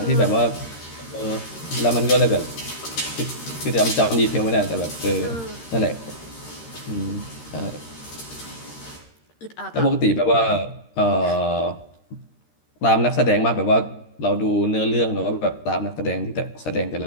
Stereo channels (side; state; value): right; late; 13 ms